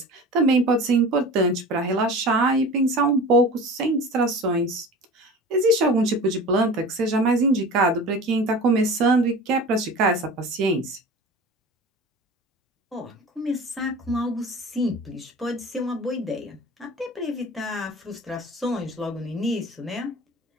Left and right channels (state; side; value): normal; both; correlation 0.37